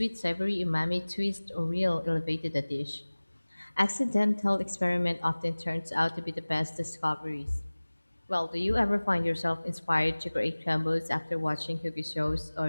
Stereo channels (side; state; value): both; inverted; correlation -1.00